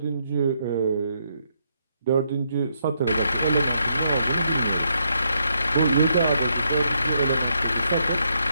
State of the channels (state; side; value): inverted; both; correlation -0.77